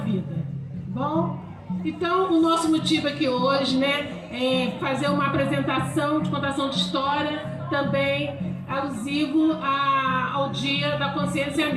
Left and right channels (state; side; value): identical; both; correlation 1.00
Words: Bom, então o nosso motivo aqui hoje, né, é fazer uma apresentação de contação de história, também alusivo ao Dia da Consciência